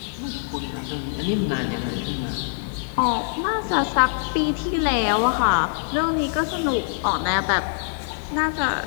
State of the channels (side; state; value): right; silent; 58 dB below the other